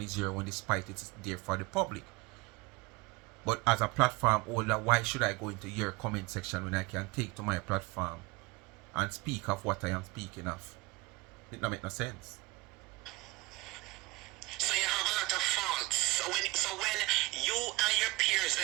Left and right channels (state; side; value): quieter; left; 22.2 dB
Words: your one, despite it's there for the public. But as a platform holder, why should I go into your comment section when I can take to my platform and speak of what I am speaking of? It don't make no sense. So you have a lot of faults. So when you and your peers